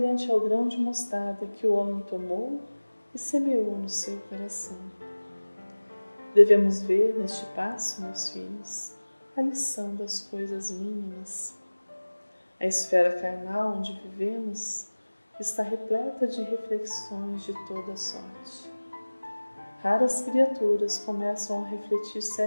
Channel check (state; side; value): inverted; both; correlation -1.00